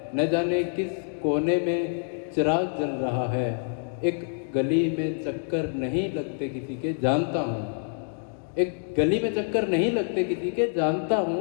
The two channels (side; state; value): right; silent; digital silence